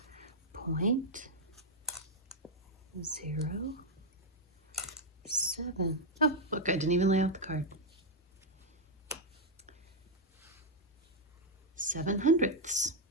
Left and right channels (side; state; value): both; normal; correlation -0.01